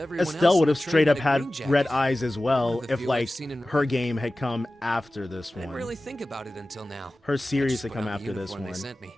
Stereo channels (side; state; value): both; normal; correlation 0.96